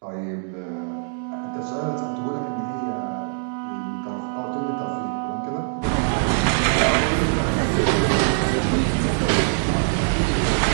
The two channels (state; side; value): silent; left; 63 dB below the other